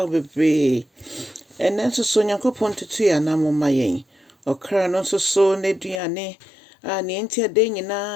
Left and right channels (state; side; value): drops out; right; at 6.0 s